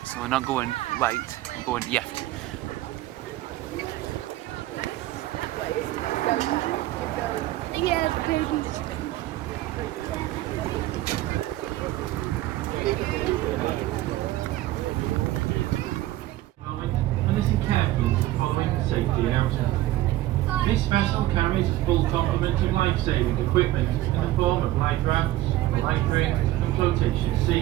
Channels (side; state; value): left; quieter; 15.8 dB